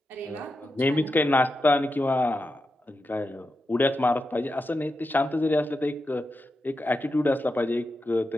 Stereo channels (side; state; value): both; normal; correlation 0.88